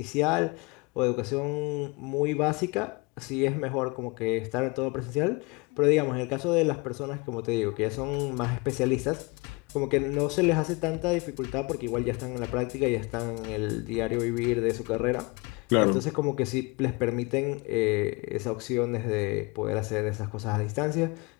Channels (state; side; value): quieter; right; 27.2 dB